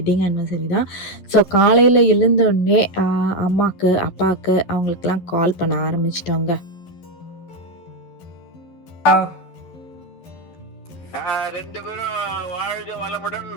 ஆனிவர்சரி தான். ஸோ காலையில் எழுந்தோடனே அம்மாவுக்கு அப்பாவுக்கு அவங்களுக்கெல்லாம் கால் பண்ண ஆரம்பிச்சிட்டோங்க. ரெண்டு பேரும் வாழ்க வளமுடன்,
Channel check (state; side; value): late; right; 12 ms